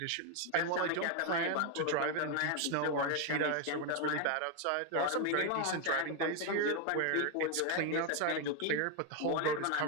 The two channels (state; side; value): different; both; correlation 0.01